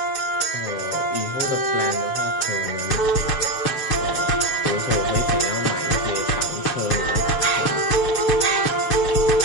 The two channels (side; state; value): right; late; 7.3 ms